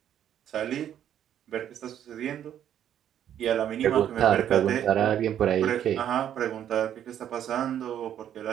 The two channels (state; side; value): quieter; left; 10.2 dB